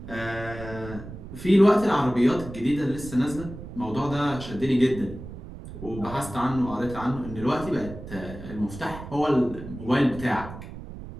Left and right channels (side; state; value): right; noise; rumble, 12 dB below the sound